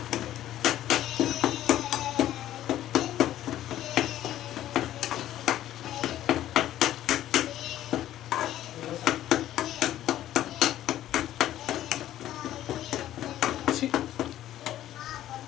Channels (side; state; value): right; quieter; 12.8 dB